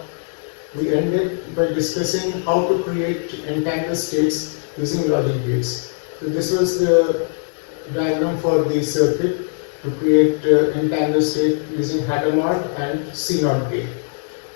we ended by discussing how to create entangled states using logic gates. So this was the diagram for the circuit to create entangled state using Hadamard and C0 gate.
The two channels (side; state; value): right; silent; 65 dB below the other